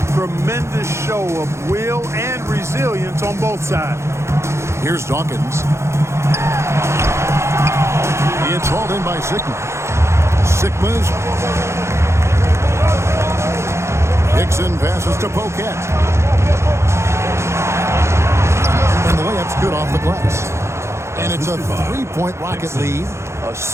Tremendous show of will and resilience on both sides. Here's Dawkins. It's hauled in by Sickman. Sickman's. Hickson passes to Pocat. And the layup's good off the glass. And it's a 3-point Rocket lead.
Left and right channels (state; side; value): late; left; 0.13 ms